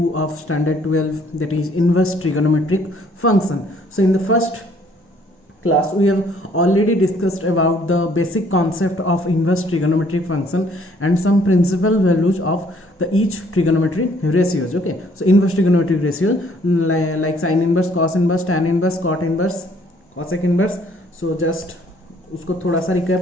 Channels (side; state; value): both; normal; correlation 0.62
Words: of standard 12, that is inverse trigonometric function. So in the first class we have already discussed about the basic concept of inverse trigonometric function and some principal values of the each trigonometric ratios. Okay, so inverse trigonometric ratios like sin inverse, cos inverse, tan inverse, cot inverse, cosec inverse. So just उसको थोड़ा सा